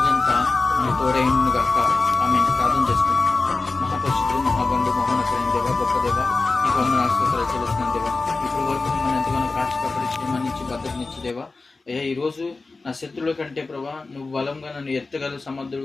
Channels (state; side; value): quieter; right; 3.7 dB